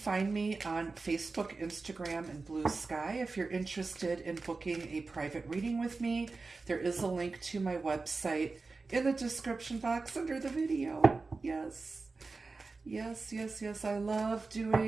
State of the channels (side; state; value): left; quieter; 3.9 dB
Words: me on Facebook, Instagram, and Blue Sky. If you're interested in booking a private reading with me, there is a link to my website in the description box under the video. Yes. I love